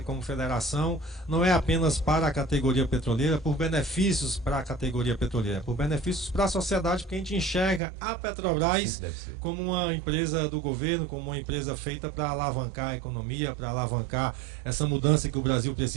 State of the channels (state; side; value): drops out; left; at 7.8 s